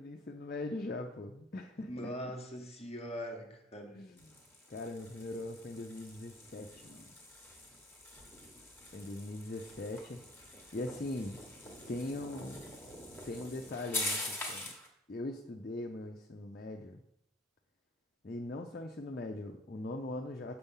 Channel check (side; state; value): both; normal; correlation 0.53